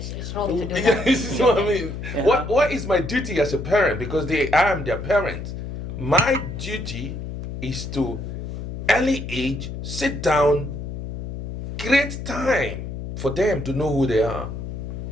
wrong to do Yeah, that. this is what I mean. Yeah. What is my duty as a parent? Because I am their parent. My duty is to, early age, sit down, create time for them to know who they are.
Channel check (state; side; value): noise; left; hum, 7 dB below the sound